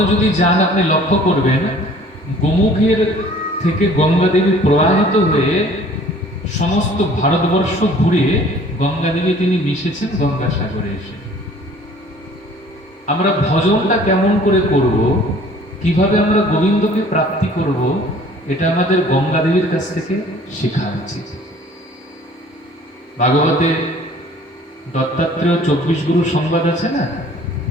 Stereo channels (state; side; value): normal; both; correlation 0.52